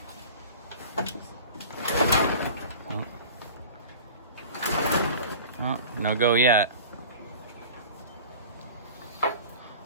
Oh, no go yet.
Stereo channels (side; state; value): both; inverted; correlation -0.40